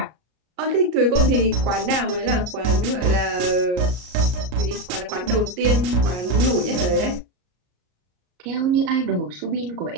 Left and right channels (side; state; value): left; late; 33 ms